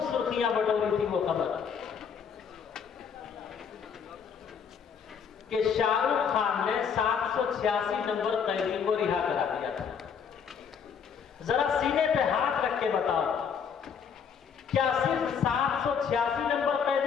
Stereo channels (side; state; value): right; quieter; 6.9 dB